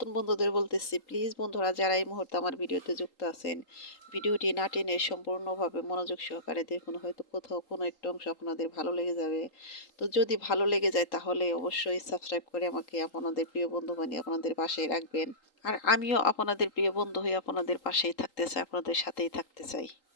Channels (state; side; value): late; right; 3.8 ms